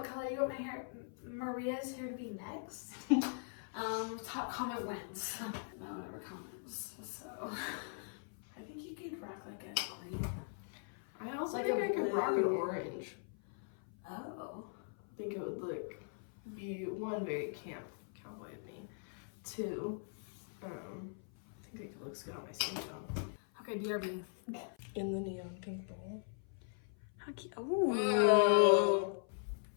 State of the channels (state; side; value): silent; right; 51 dB below the other